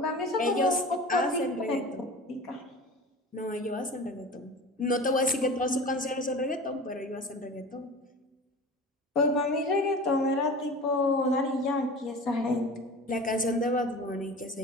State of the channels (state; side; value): normal; both; correlation 0.36